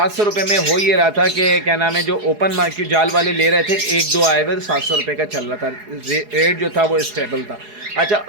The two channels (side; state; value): left; late; 4.8 ms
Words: रुपये में हो ये रहा था कि क्या नाम है जो ओपन मार्केट जाल वाले ले रहे थे, एक दो आए हुए 700 रुपये का चल रहा था, रेट जो था वो स्टेबल था। अच्छा